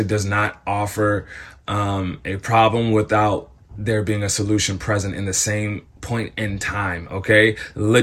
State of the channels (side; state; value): both; identical; correlation 1.00